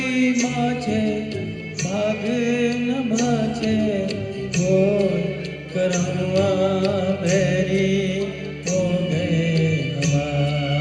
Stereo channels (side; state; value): both; identical; correlation 1.00